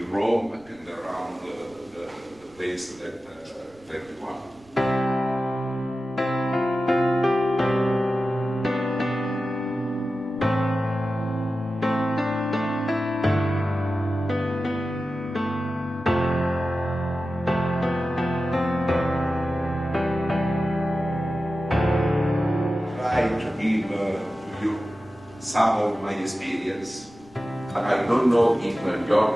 Rome and around the place that you want. To give to you some of my experience. I don't know in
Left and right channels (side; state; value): right; noise; rumble, 29 dB below the sound